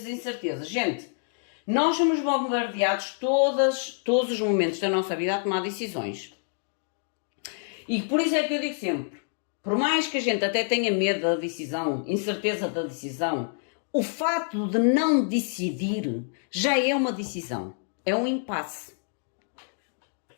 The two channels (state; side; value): silent; right; digital silence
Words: incertezas. Gente, nós somos bombardeados todos os momentos da nossa vida a tomar decisões. E por isso é que eu digo sempre, por mais que a gente até tenha medo da decisão, incerteza da decisão, o fato de não decidir já é uma decisão. É um impasse.